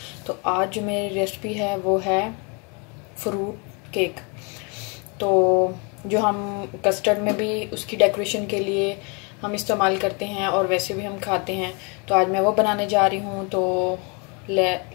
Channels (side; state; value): right; quieter; 32.7 dB